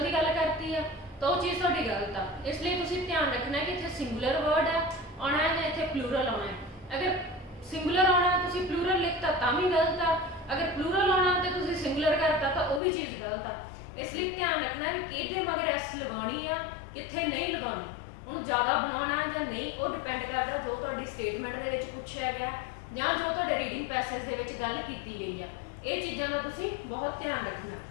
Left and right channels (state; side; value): drops out; right; at 12.8 s